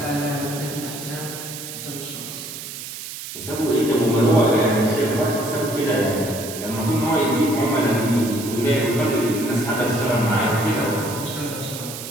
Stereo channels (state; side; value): noise; right; hiss, 10 dB below the sound